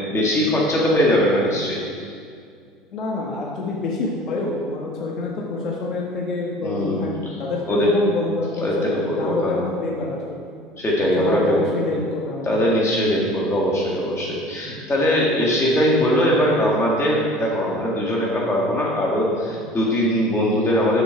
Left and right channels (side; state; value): both; normal; correlation 0.47